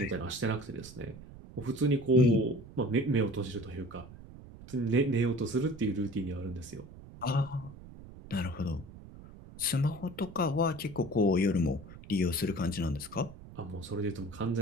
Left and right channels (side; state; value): right; noise; rumble, 17 dB below the sound